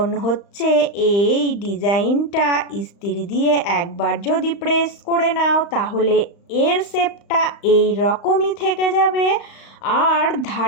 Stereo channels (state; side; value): late; right; 35 ms